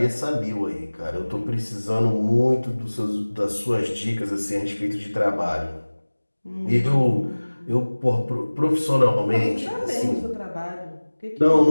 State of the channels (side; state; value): both; inverted; correlation -1.00